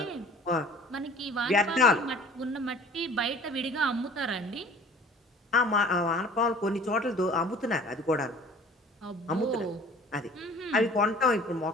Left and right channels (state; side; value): normal; both; correlation 0.48